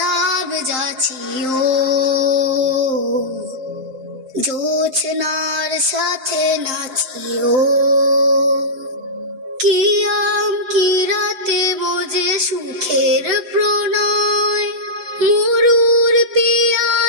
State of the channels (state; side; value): late; left; 7.7 ms